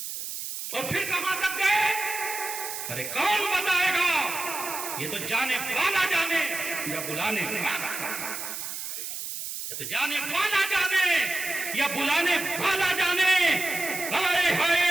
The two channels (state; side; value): noise; right; hiss, 6 dB below the sound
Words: اور پھر کہاں تک گئے؟ ارے کون بتائے گا؟ یہ تو جانے والا جانے یا بلانے والا، یا تو جانے والا جانے یا بلانے والا جانے۔ ہائے